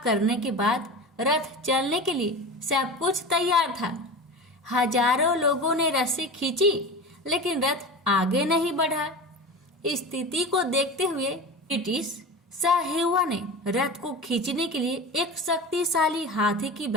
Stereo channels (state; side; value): normal; both; correlation 0.30